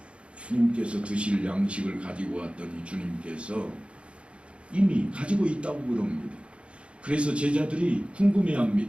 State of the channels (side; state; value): left; late; 0.059 ms